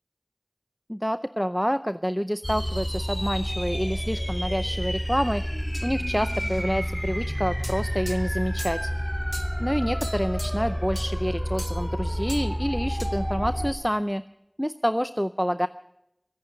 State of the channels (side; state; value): both; identical; correlation 1.00